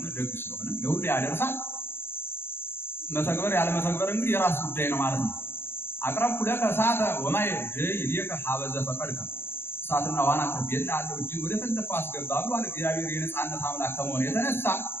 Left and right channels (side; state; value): right; late; 0.11 ms